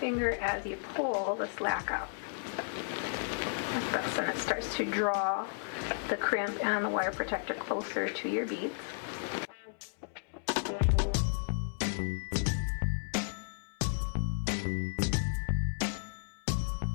as you pull the slack out. Like this, and it starts to draw the crimp and the wire protector closer to your beads.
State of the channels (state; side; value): silent; right; 55 dB below the other